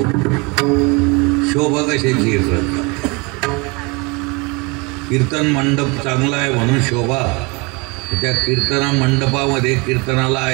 शोभा कशाची हे कळतं. कीर्तन मंडप चांगला आहे म्हणून शोभा. त्या कीर्तना मंडपामध्ये कीर्तनाला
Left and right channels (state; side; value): quieter; left; 27.8 dB